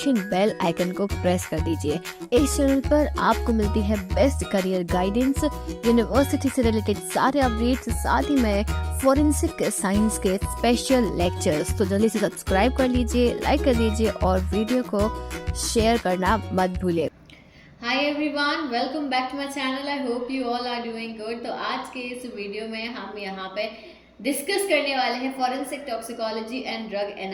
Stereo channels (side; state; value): both; identical; correlation 1.00